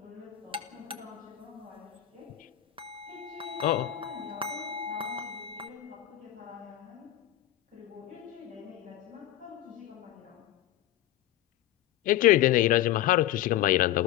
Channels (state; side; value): quieter; right; 13.3 dB